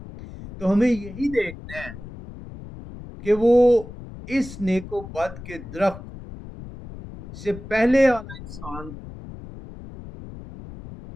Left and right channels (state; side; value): noise; left; rumble, 14 dB below the sound